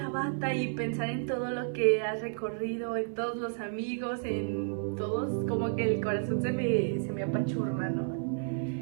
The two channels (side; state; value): left; silent; digital silence